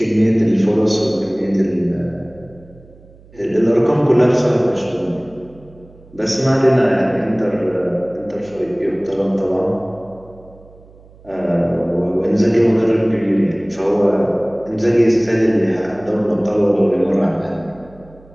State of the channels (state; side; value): noise; right; hum, 25 dB below the sound